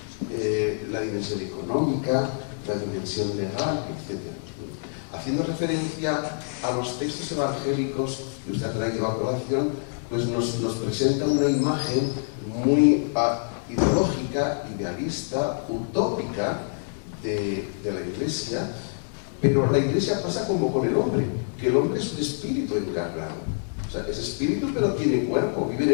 la dimensión económica, la dimensión legal, etc. Haciendo referencia a los textos evangélicos que usted ha traído a colación, pues nos presenta una imagen muy ideológica, idealista, utópica de la Iglesia, pero la Iglesia pasa como con el hombre, que el hombre es un espíritu encarnado. O sea, es espíritu pero tiene cuerpo, vive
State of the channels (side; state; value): right; silent; digital silence